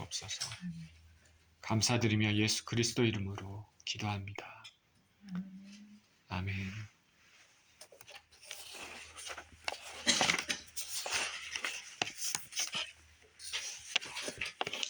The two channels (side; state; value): both; identical; correlation 1.00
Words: 감사드리며 예수 그리스도 이름으로 기도합니다. 아멘.